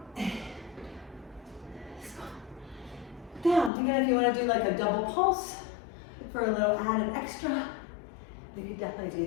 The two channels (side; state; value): right; drops out; at 3.7 s